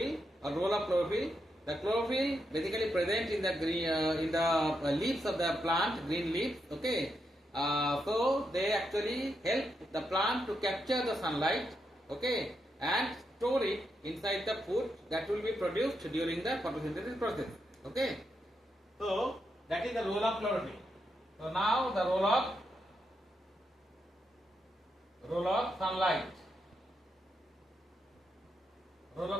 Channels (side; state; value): both; normal; correlation 0.83